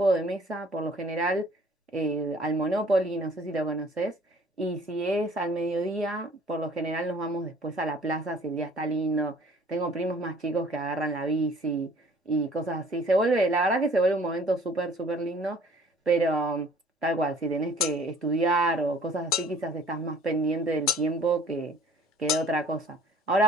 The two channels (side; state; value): both; normal; correlation 0.53